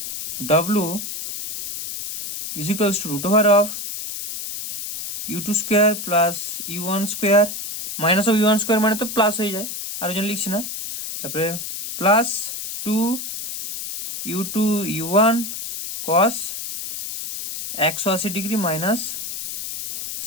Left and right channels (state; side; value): noise; left; hiss, 7 dB below the sound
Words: w = √of u2 square plus u1 square, minus of u1 square মানে তো প্লাস হয়ে যায়, আর ওই জন্য লিখছি না। তারপরে plus 2 u2 u1 cos 180 degree minus